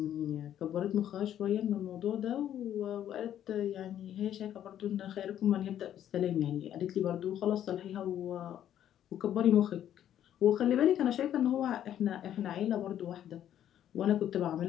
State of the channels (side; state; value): right; quieter; 10.8 dB